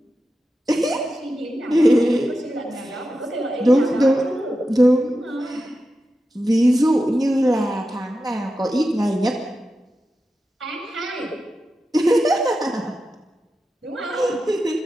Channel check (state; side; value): normal; both; correlation 0.91